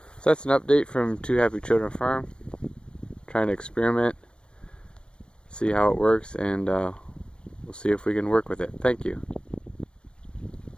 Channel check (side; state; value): right; late; 0.056 ms